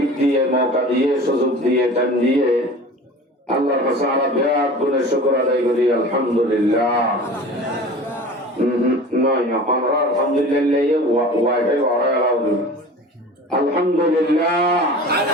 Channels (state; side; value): normal; both; correlation 0.39